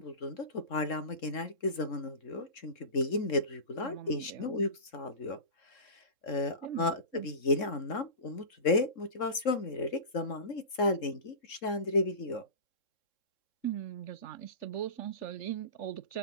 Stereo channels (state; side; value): late; right; 3.7 ms